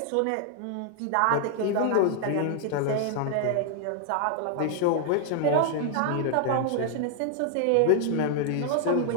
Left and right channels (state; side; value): different; both; correlation 0.00